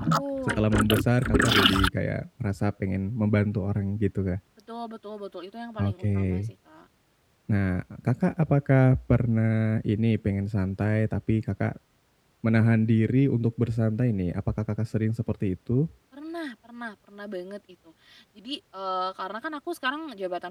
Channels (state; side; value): identical; both; correlation 1.00